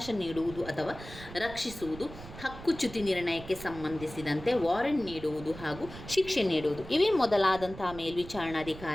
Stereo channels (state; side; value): noise; right; rumble, 14 dB below the sound